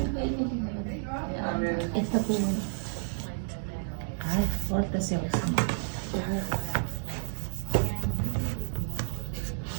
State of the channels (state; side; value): silent; left; 57 dB below the other